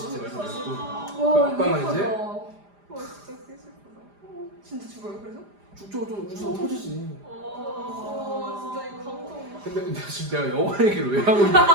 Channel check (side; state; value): left; late; 4.9 ms